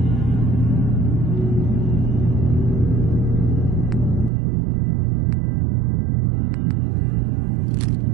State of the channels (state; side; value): drops out; left; at 4.3 s